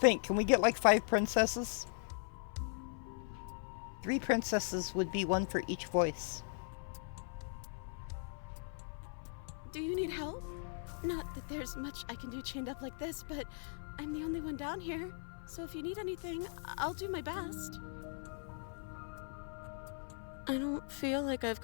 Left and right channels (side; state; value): right; silent; 52 dB below the other